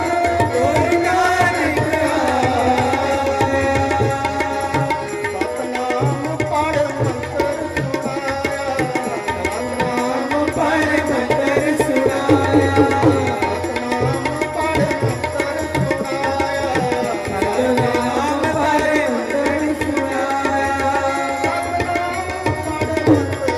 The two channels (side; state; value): both; identical; correlation 1.00